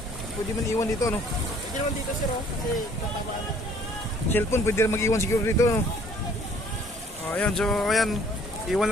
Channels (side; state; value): both; normal; correlation 0.57